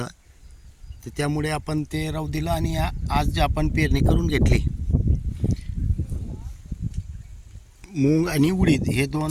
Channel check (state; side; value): identical; both; correlation 1.00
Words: तर त्यामुळे आपण ते राहू दिलं आणि आज आपण पेरणी करून घेतली. मूग आणि उडीद हे